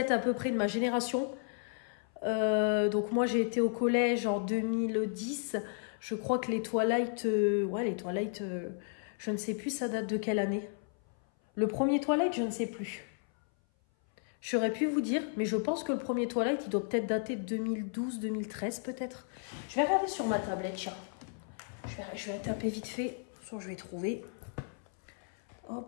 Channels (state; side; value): silent; right; 55 dB below the other